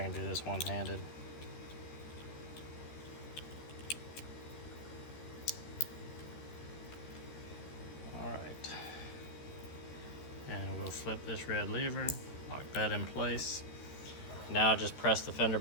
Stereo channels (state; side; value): late; right; 13 ms